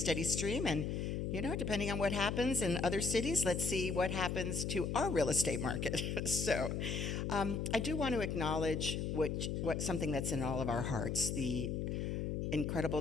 stream. And, you know, depending on what happens in other cities, let's see what happens to our real estate market. So I do want to acknowledge what something that's in all of our hearts, the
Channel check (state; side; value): noise; left; hum, 1 dB below the sound